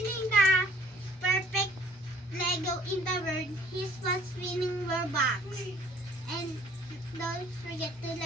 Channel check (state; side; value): normal; both; correlation 0.57